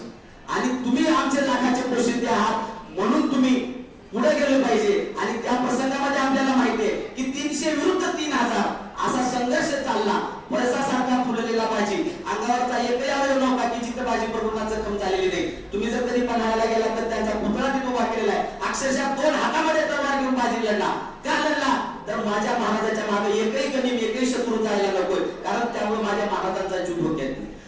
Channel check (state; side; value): identical; both; correlation 1.00